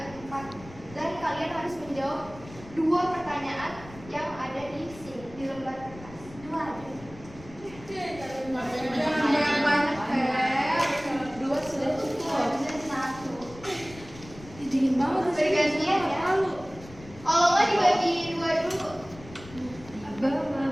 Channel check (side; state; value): left; noise; rumble, 18 dB below the sound